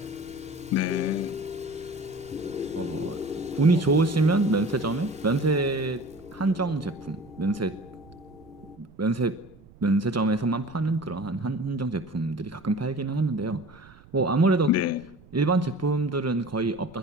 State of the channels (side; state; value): right; noise; rumble, 24 dB below the sound